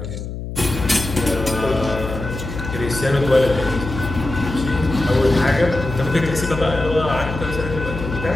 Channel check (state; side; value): noise; left; hum, 7 dB below the sound